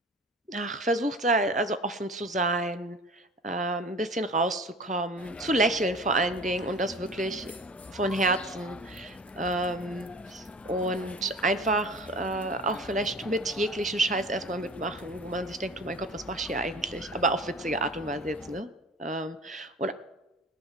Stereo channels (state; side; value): normal; both; correlation 0.40